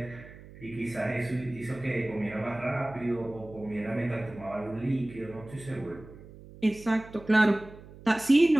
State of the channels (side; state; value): right; noise; hum, 18 dB below the sound